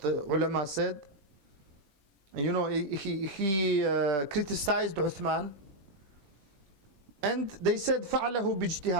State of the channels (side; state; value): left; late; 20 ms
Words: ulama said. And you know, he criticized Uthman, and they said فَعَلَهُ